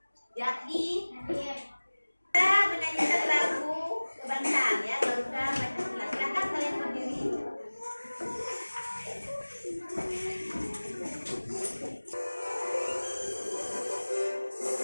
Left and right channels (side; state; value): both; inverted; correlation -1.00